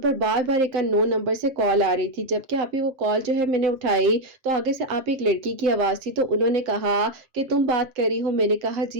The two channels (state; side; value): late; left; 7.6 ms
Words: بار بار ایک نو نمبر سے کال آ رہی تھی, جبکہ آپ ہی وہ کال جو ہے میں نے اٹھائی تو آگے سے آپ ایک لڑکی کی آواز تھی. تو انہوں نے کہا کہ تم بات کر رہی ہو, میں نے کہا